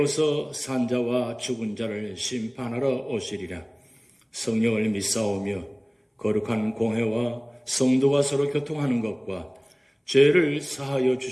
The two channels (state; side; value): identical; both; correlation 1.00